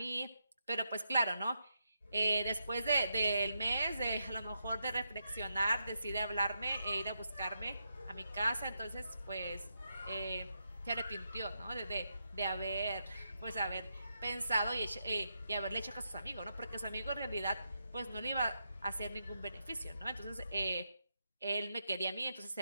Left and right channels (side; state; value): both; inverted; correlation -0.84